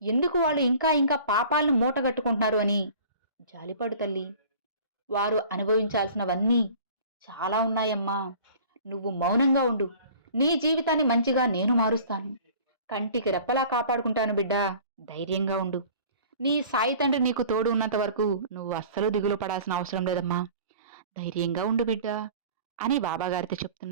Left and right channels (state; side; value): inverted; both; correlation -0.46